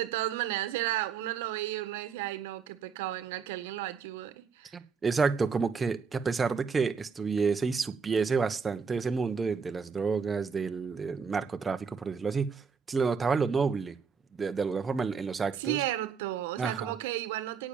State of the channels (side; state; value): left; quieter; 5.8 dB